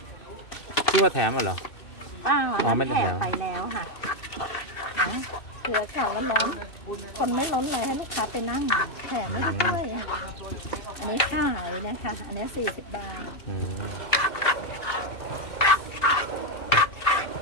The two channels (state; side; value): late; right; 2.6 ms